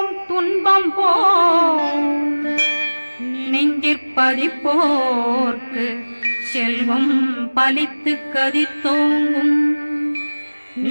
துன்பம் போம் நெஞ்சிற்பதிப்போர்க்கு செல்வம் பலித்து கதித்தோங்கும்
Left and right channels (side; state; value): both; inverted; correlation -1.00